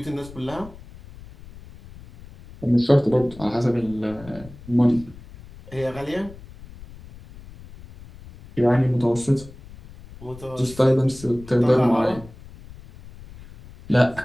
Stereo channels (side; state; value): left; noise; rumble, 19 dB below the sound